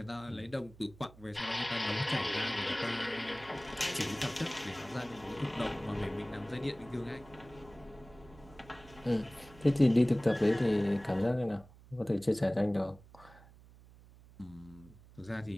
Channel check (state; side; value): noise; right; hum, 22 dB below the sound